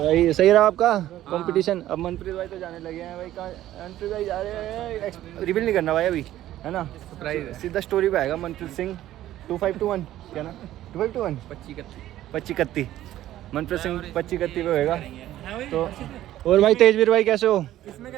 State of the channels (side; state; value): left; quieter; 13.6 dB